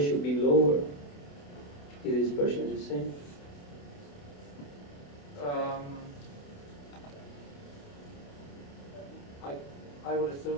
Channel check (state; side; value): late; right; 28 ms